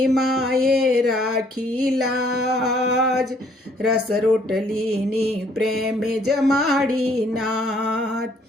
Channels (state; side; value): normal; both; correlation 0.63